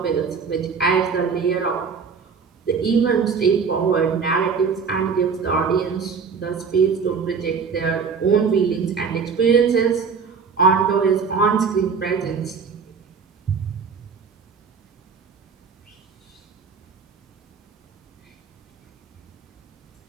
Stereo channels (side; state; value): left; quieter; 5.7 dB